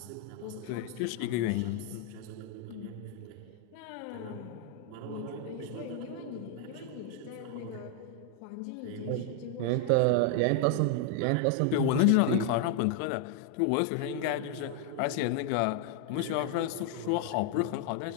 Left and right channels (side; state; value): both; different; correlation 0.00